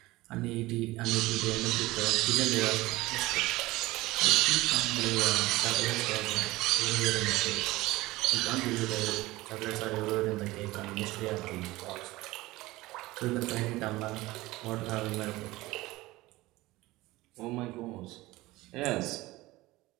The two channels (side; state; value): left; quieter; 19.3 dB